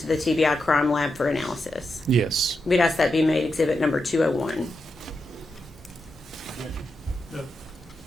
the TBI crime lab for analysis? Yes. We'd ask that be made exhibit number 201.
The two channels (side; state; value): both; normal; correlation 0.86